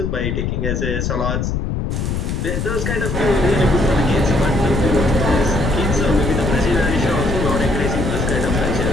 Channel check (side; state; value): left; noise; rumble, 1 dB below the sound